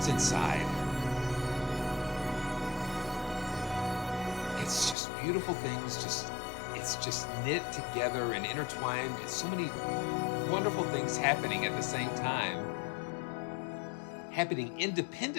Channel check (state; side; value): drops out; right; at 5.0 s